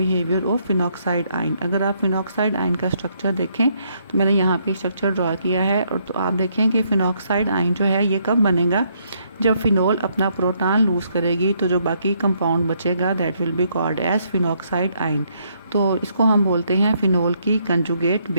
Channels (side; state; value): both; inverted; correlation -0.72